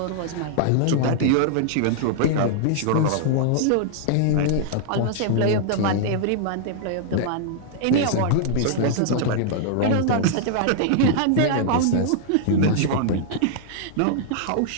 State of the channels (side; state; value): both; different; correlation -0.01